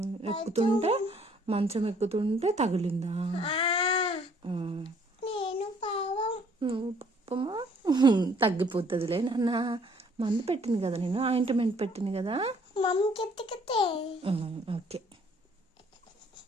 ఎక్కుతుంటే మంచం ఎక్కుతుంటే తగిలిందా? నువ్వు పాపమా? తగ్గిపోతుందిలే నాన్న. మందు పెట్టింది కదా, నేను ఆయింట్మెంట్ పెట్టింది కదా. Okay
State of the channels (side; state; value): both; normal; correlation 0.61